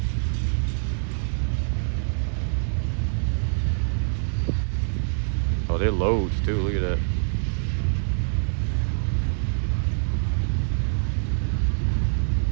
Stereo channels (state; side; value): silent; left; 62 dB below the other